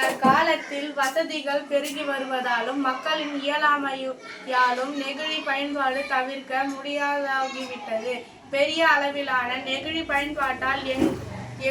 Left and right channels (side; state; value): both; identical; correlation 1.00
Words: வசதிகள் பெருகி வருவதாலும் மக்களின் இயலாமையாலும் நெகிழி பயன்பாடு தவிர்க்க முடியாதாகிவிட்டது. பெரிய அளவிலான நெகிழி பயன்பாட்டால்